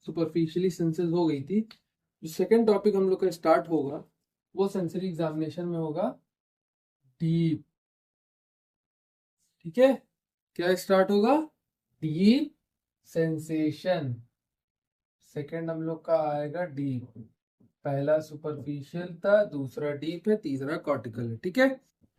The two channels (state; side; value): identical; both; correlation 1.00